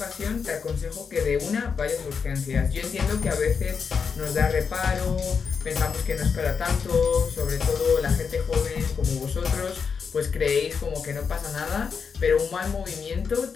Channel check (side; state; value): right; quieter; 5.9 dB